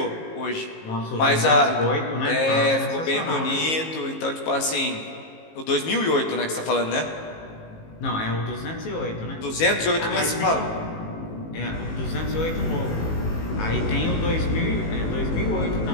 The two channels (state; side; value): late; right; 19 ms